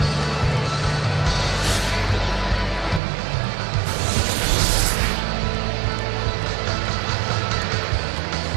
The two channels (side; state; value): left; drops out; at 3.0 s